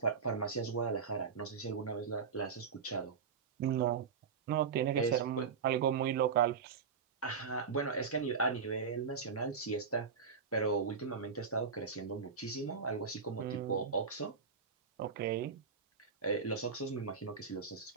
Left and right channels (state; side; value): quieter; left; 5.8 dB